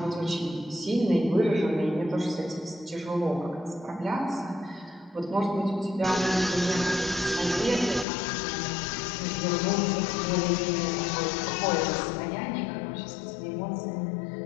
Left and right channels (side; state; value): right; drops out; at 8.1 s